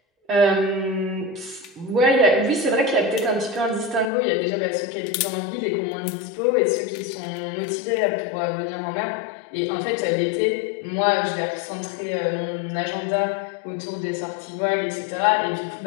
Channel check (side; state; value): right; drops out; at 4.1 s